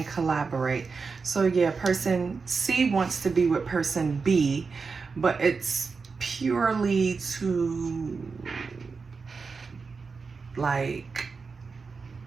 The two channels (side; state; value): left; quieter; 4.8 dB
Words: collaborate. So yeah, person C wants to be with person B, but it's purely to like